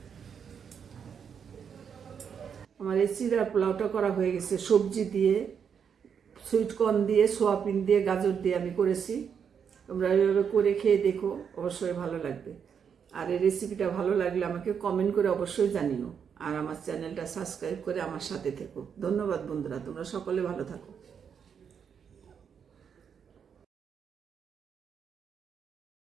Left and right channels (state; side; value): quieter; left; 7.2 dB